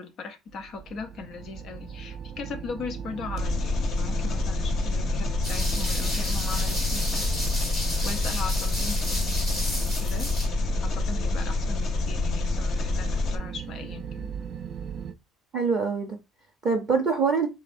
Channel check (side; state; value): both; normal; correlation 0.69